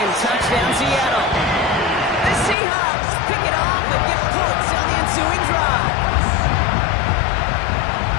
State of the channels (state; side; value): drops out; right; at 2.6 s